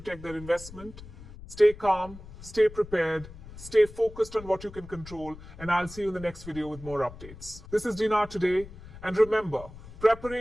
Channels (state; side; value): noise; left; rumble, 16 dB below the sound